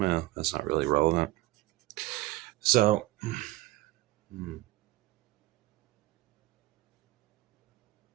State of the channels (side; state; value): left; quieter; 18.1 dB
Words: that's not really relevant. So,